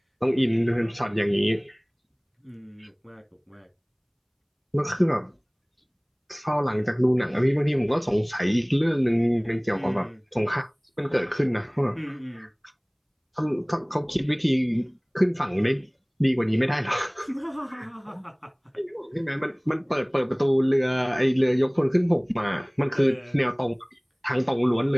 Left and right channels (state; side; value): identical; both; correlation 1.00